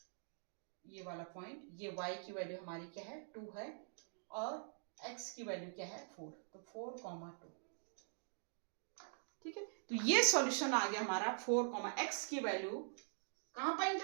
ये वाला पॉइंट। ये y की वैल्यू हमारी क्या है, 2 है, और x की वैल्यू क्या है, 4, तो 4, 2। ठीक है, तो ये सॉल्यूशन आ गया हमारा। 4, x की वैल्यू कहां पर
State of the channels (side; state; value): left; silent; digital silence